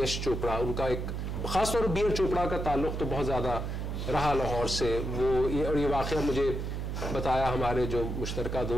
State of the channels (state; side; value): noise; right; hum, 3 dB below the sound